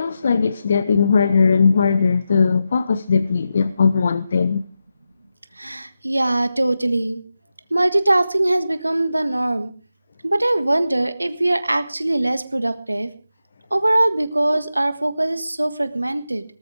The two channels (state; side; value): inverted; both; correlation -0.90